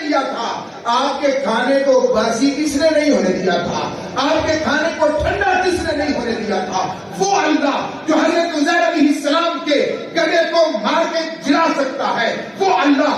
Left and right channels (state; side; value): identical; both; correlation 1.00